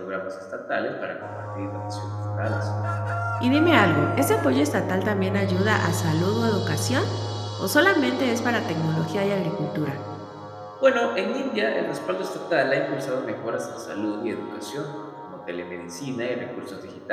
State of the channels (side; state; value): both; identical; correlation 1.00